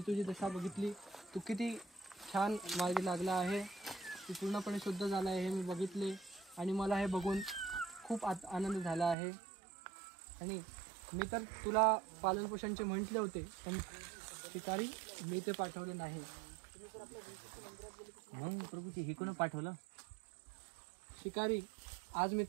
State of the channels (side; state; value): left; drops out; at 9.2 s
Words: दशा बघितली. तू किती छान मार्गी लागला आहे. तू पूर्णपणे शुद्ध झाला आहे हे मी बघितले आणि मला हे बघून खूप आनंद झाला आहे. आणि मी तर तुला पालनपोषणचे म्हटले होते, पण शिकारी मी ते पाठवले नाही. मग प्रभूजी हे कोण पाठवलं? शिकारी, आज मी